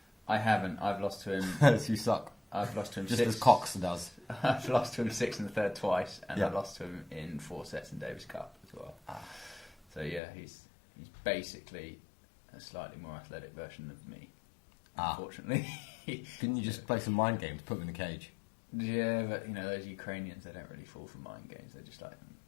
I haven't. I've lost to him... So you suck. I've lost to him just six... as Cox does. I've lost to him 6 in the third twice, and I've lost to him in 4 sets in Davis Cup as well. So yeah, he's basically a slightly more athletic version of me, unfortunately. Couldn't you just play some mind games, put him in the cage? Yeah, but those Ukrainians, they don't really fall for mind games. They're just like,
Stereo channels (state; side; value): drops out; right; at 10.2 s